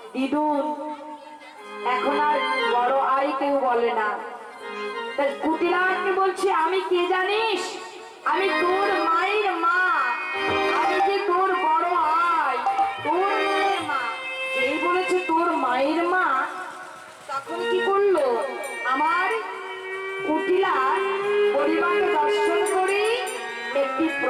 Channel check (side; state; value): both; identical; correlation 1.00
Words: দিদুন, এখন আর বড় আই কেউ বলে না। তাই কুটিলাকে বলছে, আমি কে জানিস? আমি তোর মায়ের মা, আমি যে তোর বড় আই, তোর মায়ের মা। এই বলেছে তোর মায়ের মা, তখন কি করলো? আমার কুটিলা পরিবারকে দর্শন করে একটি